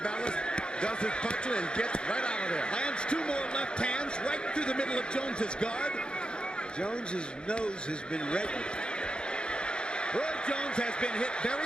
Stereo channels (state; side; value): late; right; 0.051 ms